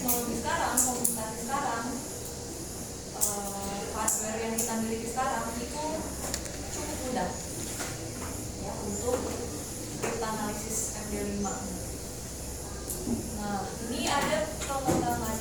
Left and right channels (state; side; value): identical; both; correlation 1.00